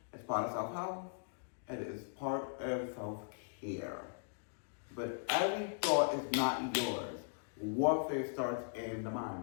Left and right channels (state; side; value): silent; right; digital silence